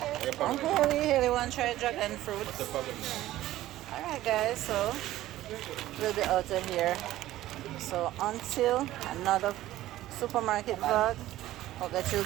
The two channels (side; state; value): left; quieter; 15.0 dB